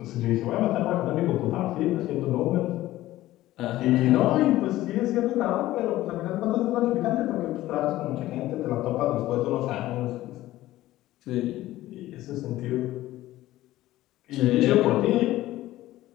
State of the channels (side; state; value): right; quieter; 15.7 dB